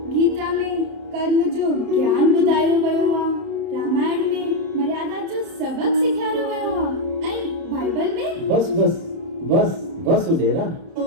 गीता में कर्म जो ज्ञान ॿुधायो वियो आहे, रामायण में मर्यादा जो सबक सेखारियो वियो आहे ऐं बाइबल में बस बस बस बस उडेरा।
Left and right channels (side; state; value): left; late; 30 ms